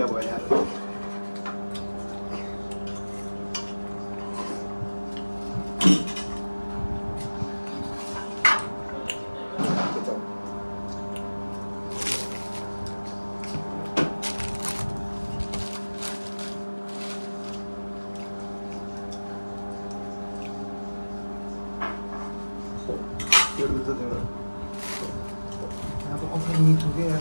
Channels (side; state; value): both; inverted; correlation -1.00